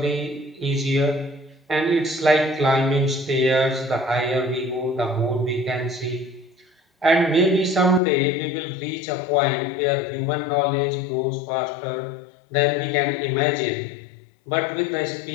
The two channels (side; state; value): right; drops out; at 8.0 s